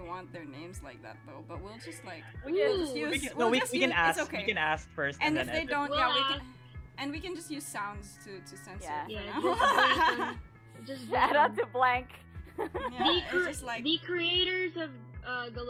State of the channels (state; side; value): identical; both; correlation 1.00